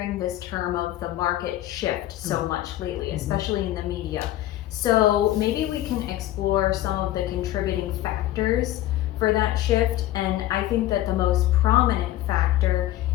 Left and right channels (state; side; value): quieter; right; 14.4 dB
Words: this term of the market shift so much lately, especially in the media. So maybe we can explore some of the contributing factors for that shift. And I think that the most prominent factor